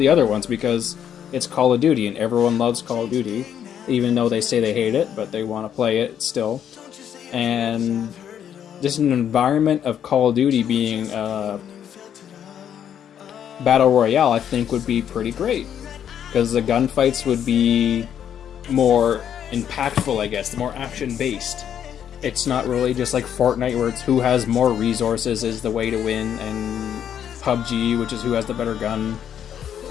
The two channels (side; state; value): right; quieter; 9.2 dB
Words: other ones, because it's Call of Duty and everyone loves Call of Duty, even though they say they hate it, but they want to play it still. And just an environment of Call of Duty being Battle Royale, I think would be pretty great, because the gunfights would be more impactful, I guess, more action-based. It's not really just like Fortnite, where it's who has more resources is the way to win, and PUBG, which is who has the better gun.